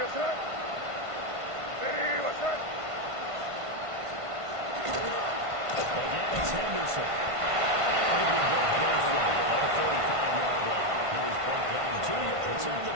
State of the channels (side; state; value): left; late; 1.5 ms